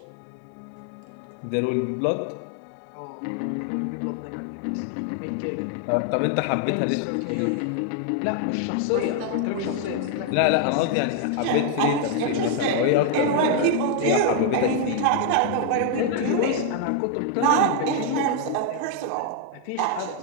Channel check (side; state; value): both; different; correlation 0.00